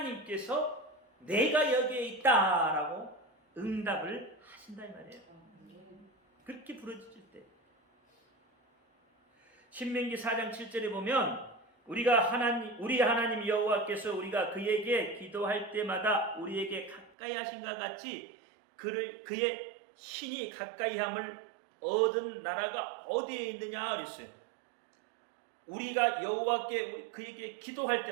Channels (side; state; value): left; drops out; at 17.1 s